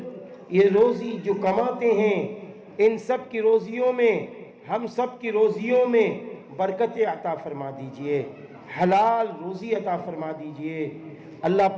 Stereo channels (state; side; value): identical; both; correlation 1.00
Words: یہ روزی جو کماتے ہیں ان سب کی روزیوں میں ہم سب کی روزیوں میں برکت عطا فرما دیجئے حلال روزی عطا فرما دیجئے اللہ